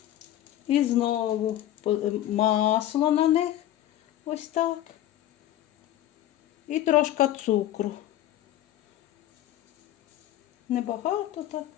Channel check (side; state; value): right; quieter; 12.9 dB